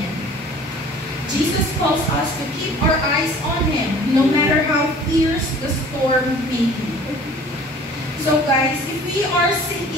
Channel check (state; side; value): normal; both; correlation 0.48